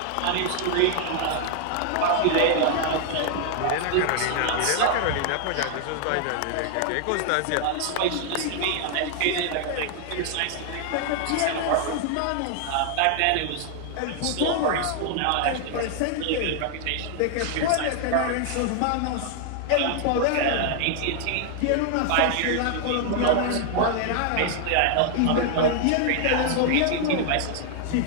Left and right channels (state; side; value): different; both; correlation 0.00